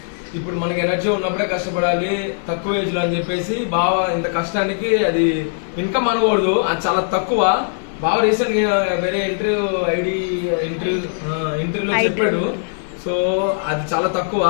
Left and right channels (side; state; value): right; silent; digital silence